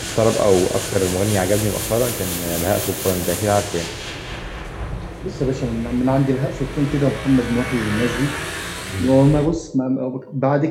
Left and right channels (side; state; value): both; identical; correlation 1.00